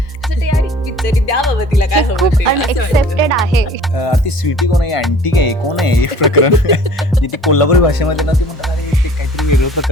तरी द्या बाबा तिला काय खूप अनएक्सेप्टेड आहे. ती स्वीटी कोण आहे, अँटी काय कोण आहे, एक प्रकरण ती कोल्हापुरी भाषेमध्ये ना ती म्हणतात अरे ते काहीतरी वेगळं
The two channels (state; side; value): normal; both; correlation 0.49